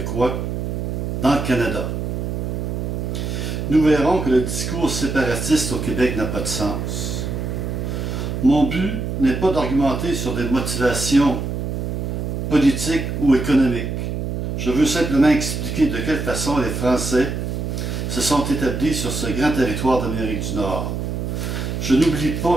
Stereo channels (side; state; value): right; noise; hum, 3 dB below the sound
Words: dans le Canada. Nous verrons que le discours séparatiste au Québec n'a pas de sens. Mon but n'est pas d'argumenter sur des motivations politiques ou économiques. Je veux simplement expliquer de quelle façon les Français se sont établis sur ce grand territoire d'Amérique du Nord. Je n'oublie